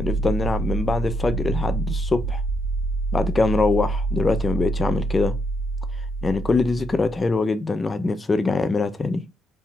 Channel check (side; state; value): both; normal; correlation 0.79